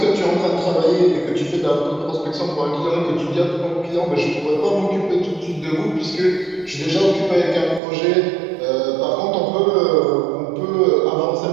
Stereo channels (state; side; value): drops out; left; at 7.8 s